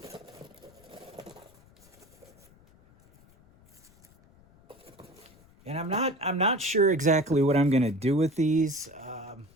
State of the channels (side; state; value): left; noise; rumble, 28 dB below the sound